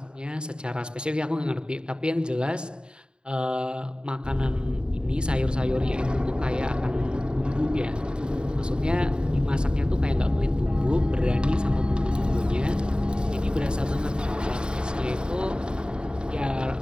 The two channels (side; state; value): left; late; 0.050 ms